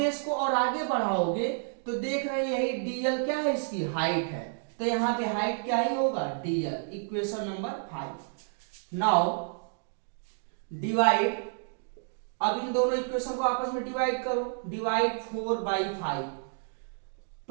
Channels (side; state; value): left; silent; digital silence